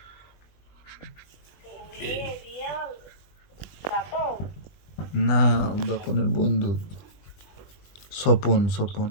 না বাপনের বন্ধু স্বপন। স্বপন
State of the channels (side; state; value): right; late; 20 ms